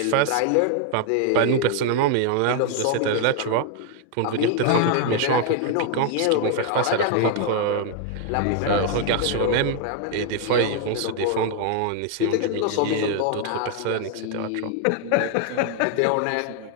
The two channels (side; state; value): both; different; correlation 0.00